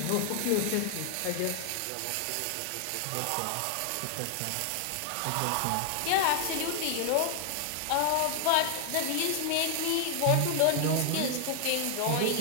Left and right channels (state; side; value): different; both; correlation 0.00